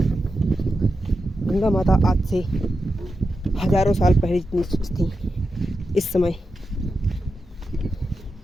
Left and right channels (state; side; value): normal; both; correlation 0.89